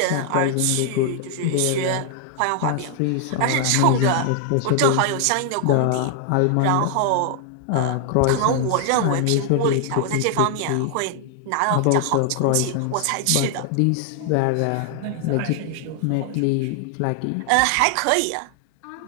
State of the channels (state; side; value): different; both; correlation 0.00